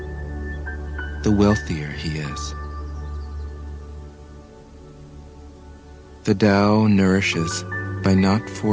the wealthier he is. The Tao nourishes by not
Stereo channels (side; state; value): both; identical; correlation 1.00